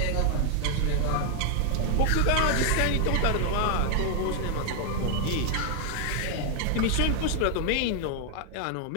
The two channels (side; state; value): both; different; correlation 0.00